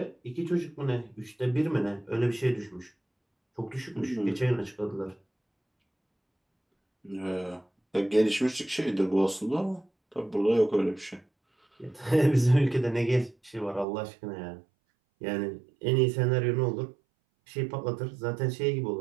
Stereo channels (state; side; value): drops out; left; at 13.9 s